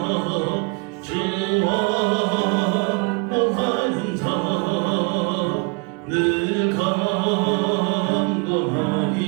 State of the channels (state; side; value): quieter; left; 30.9 dB